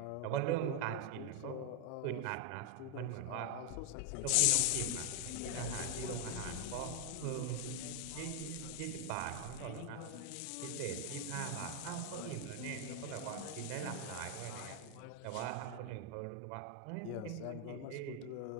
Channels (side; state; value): both; different; correlation 0.01